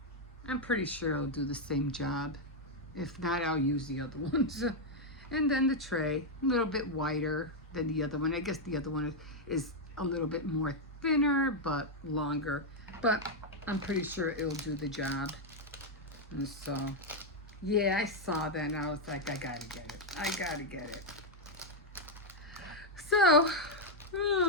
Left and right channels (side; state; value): both; normal; correlation 0.00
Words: pretty sure it'll do the same job. If not, I'll use the other ones. And then the tray, a little bit wider than the other one. I guess the other one is a little bit more thinner, but longer. But I'm pretty sure it'll do the job. And so, yeah, I saw that and I was like, I gotta get it. I gotta get it. So,